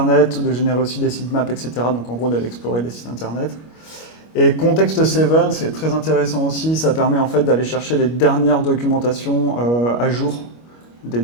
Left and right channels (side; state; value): right; late; 25 ms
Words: de générer aussi des sitemaps, etc. Donc, en gros, d'aller explorer des sites Internet. Et Context 7, c'est très intéressant aussi. Ça permet en fait d'aller chercher les dernières documentations à jour des